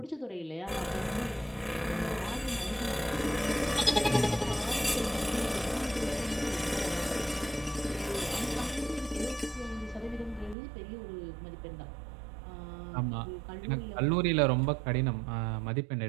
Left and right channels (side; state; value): left; drops out; at 10.6 s